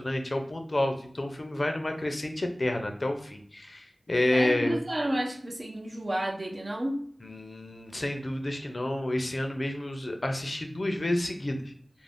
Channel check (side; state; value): both; normal; correlation 0.98